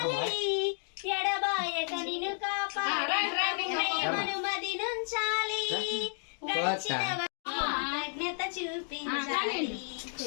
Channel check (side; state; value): right; silent; 56 dB below the other